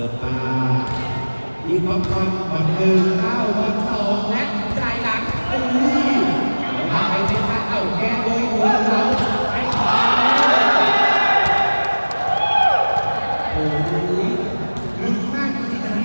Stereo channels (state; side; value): inverted; both; correlation -1.00